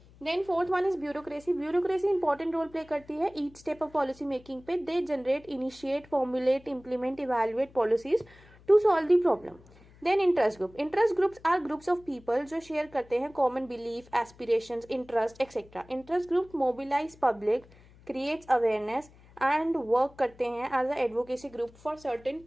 Then fourth one is bureaucracy. Bureaucracy important role play करती है each step of policy making पे। They generate, initiate, formulate, implement, evaluate policies to solve the problem. Then interest group. Interest groups are groups of people जो share करते हैं common belief, aspirations, interest etcetera. Interest group mobilize public, creates awareness and work करते हैं as a advocacy group for certain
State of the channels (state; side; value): noise; left; hum, 25 dB below the sound